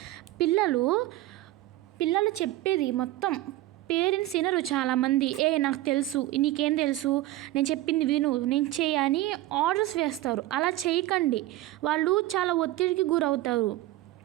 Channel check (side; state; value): left; quieter; 16.0 dB